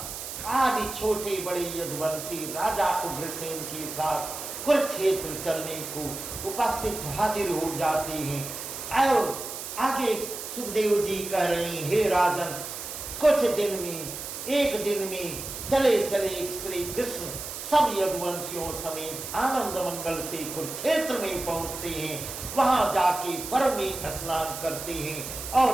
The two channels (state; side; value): noise; right; hiss, 8 dB below the sound